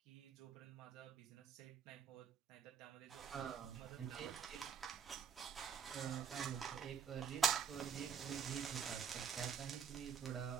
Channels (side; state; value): left; quieter; 7.0 dB